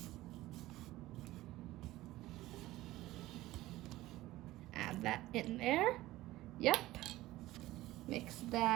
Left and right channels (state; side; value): quieter; left; 16.9 dB